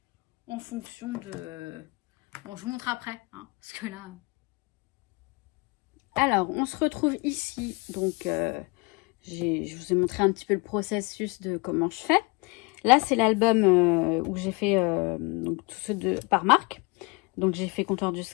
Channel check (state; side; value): quieter; right; 27.5 dB